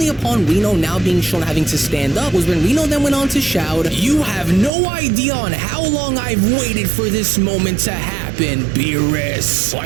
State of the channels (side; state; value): left; drops out; at 4.7 s